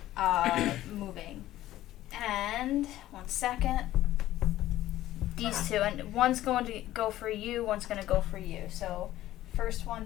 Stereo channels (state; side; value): quieter; right; 14.5 dB